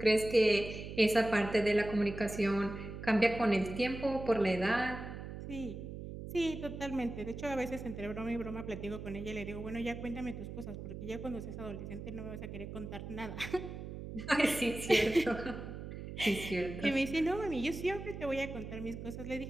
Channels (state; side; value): noise; right; hum, 9 dB below the sound